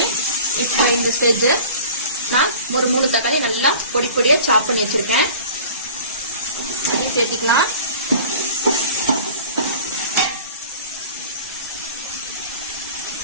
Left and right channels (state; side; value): inverted; both; correlation -0.42